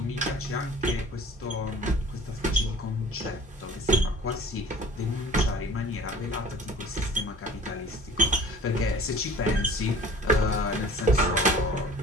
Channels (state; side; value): normal; both; correlation 0.46